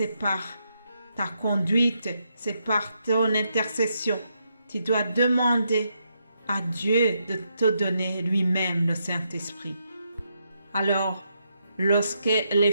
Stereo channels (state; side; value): inverted; both; correlation -0.80